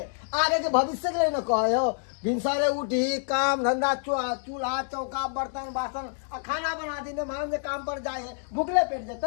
आगे के भविष्य के लिए न कहे हो भिनसरे उठी काम धंधा चूल्हा चौका बर्तन बासन आ खाना बना दी मान जे काम पर जाए है भूखले पेट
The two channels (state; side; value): silent; right; digital silence